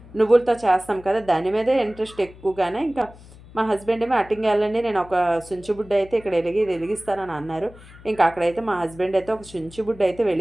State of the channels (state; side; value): noise; left; hum, 21 dB below the sound